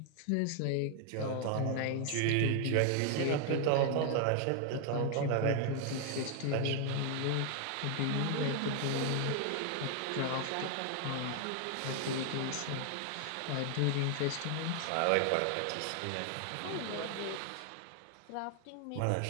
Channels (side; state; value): both; different; correlation 0.00